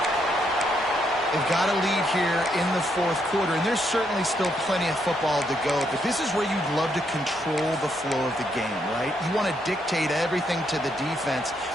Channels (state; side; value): normal; both; correlation 0.76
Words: They've got a lead here in the fourth quarter, and there's certainly still plenty of football to go, but this is where you'd love to control the flow of the game, right? You want to dictate everything to the defense,